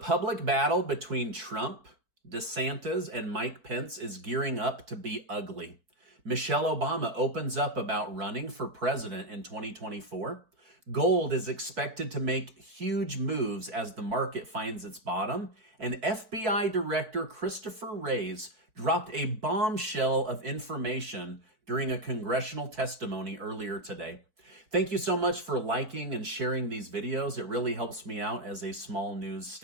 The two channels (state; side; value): late; left; 4.6 ms